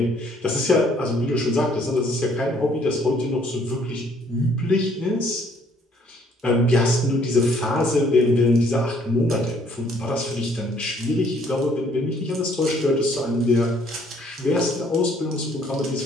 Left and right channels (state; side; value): normal; both; correlation 0.63